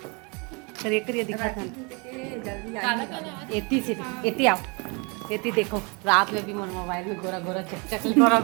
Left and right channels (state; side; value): quieter; left; 31.3 dB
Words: चलिए करिए दिखा था एती से एती आओ एती देखो रात में भी मोर मोबाइल में गोरा गोरा चक गोरा